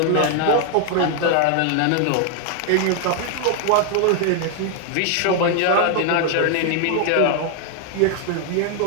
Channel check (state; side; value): different; both; correlation 0.00